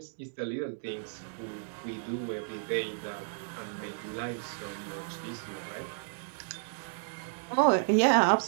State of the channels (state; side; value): silent; left; digital silence